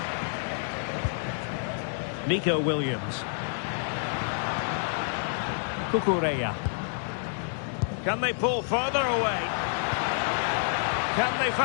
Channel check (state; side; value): silent; right; digital silence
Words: Nico Williams. Cucurella. Can they pull further away? Can they